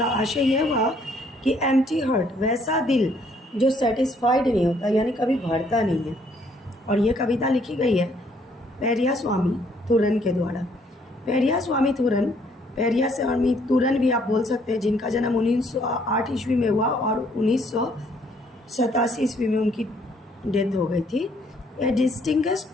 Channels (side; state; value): both; normal; correlation 0.66